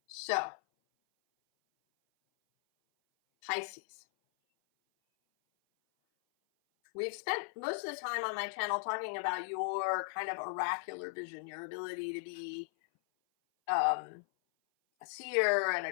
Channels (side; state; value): right; silent; 53 dB below the other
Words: So, Pisces. We've spent most of the time on my channel talking about your kind of oracular vision, your ability to be a seer and